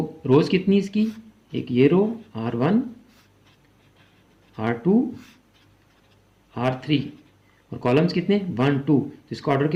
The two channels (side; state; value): both; identical; correlation 1.00